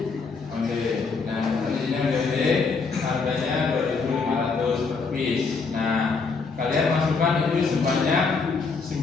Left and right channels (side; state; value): right; quieter; 4.6 dB